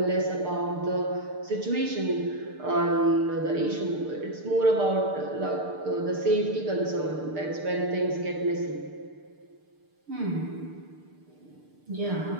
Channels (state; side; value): late; left; 6.7 ms